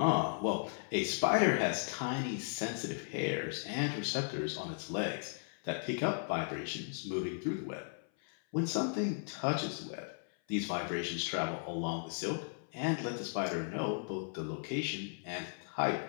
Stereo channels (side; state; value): right; silent; 54 dB below the other